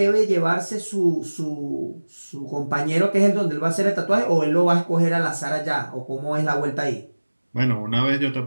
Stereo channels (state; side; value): inverted; both; correlation -1.00